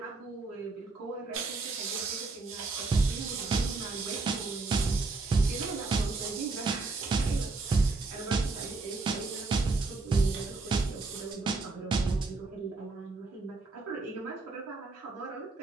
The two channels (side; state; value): left; quieter; 3.7 dB